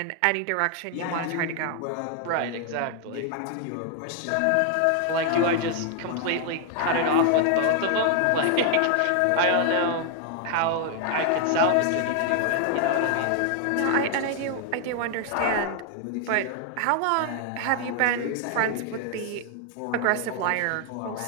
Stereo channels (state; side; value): different; both; correlation 0.00